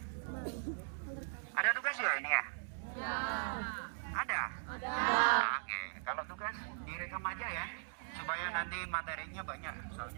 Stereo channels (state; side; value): silent; left; digital silence